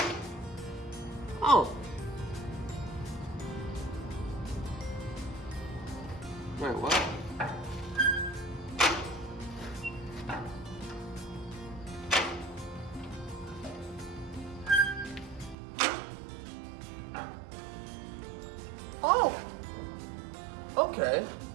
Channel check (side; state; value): left; drops out; at 15.6 s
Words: Oh. Wait, what? Oh, okay,